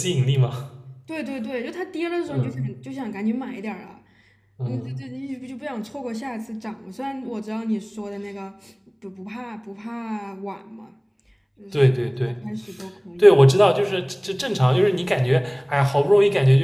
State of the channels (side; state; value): both; identical; correlation 1.00